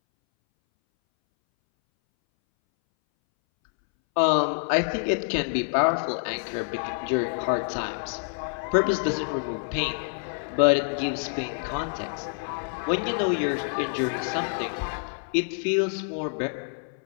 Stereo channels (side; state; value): right; silent; 60 dB below the other